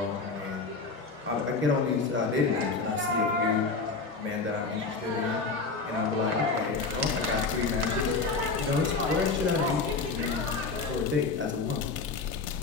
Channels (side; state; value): right; quieter; 4.3 dB